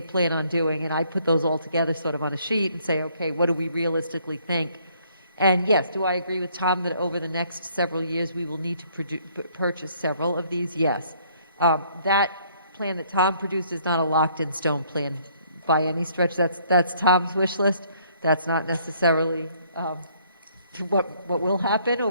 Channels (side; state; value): both; inverted; correlation -0.64